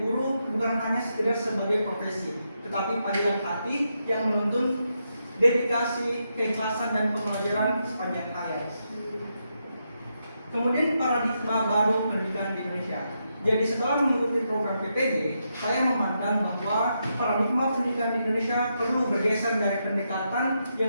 bukan hanya sekedar sebagai profesi, tetapi panggilan hati yang menuntun dedikasi, keikhlasan, dan pembelajaran sepanjang hayat. Kemudian paradigma baru pendidikan di Indonesia. Jadi setelah mengikuti program PPD, saya memandang bahwa paradigma pendidikan di Indonesia perlu bergeser dari pendekatan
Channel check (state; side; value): inverted; both; correlation -0.83